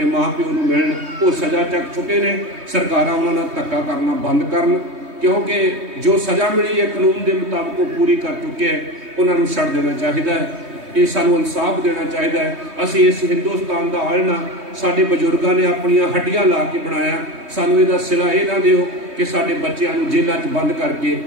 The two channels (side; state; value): left; late; 3.2 ms